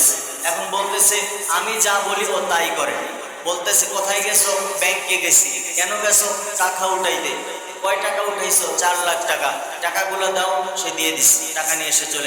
এখন বলতেছে আমি যা বলি ও তাই করে। বলতেছে কোথায় গেছো? ব্যাংকে গেছি। কেন গেছো? টাকা উঠাইতে। কয় টাকা উঠাইছো? 4 লাখ টাকা। টাকাগুলো দাও। সে দিয়ে দিচ্ছে, টাকা নিয়ে এসে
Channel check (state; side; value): identical; both; correlation 1.00